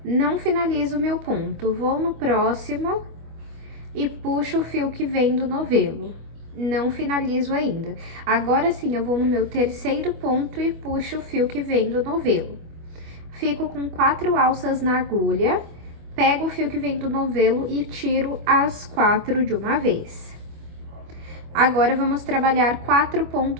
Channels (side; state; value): left; late; 25 ms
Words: Não finalizo o meu ponto, vou no próximo e puxo o fio que vem do novelo. Não finalizo ainda. Agora sim, eu vou no meu terceiro ponto e puxo o fio que vem do novelo. Fico com 4 alças na agulha, pego o fio que vem do novelo e tiro as 4 de uma vez. Agora, vamos trabalhar 4